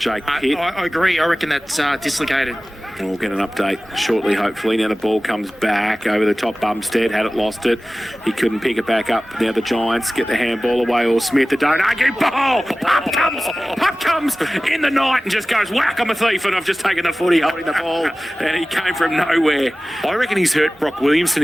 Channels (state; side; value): normal; both; correlation 0.97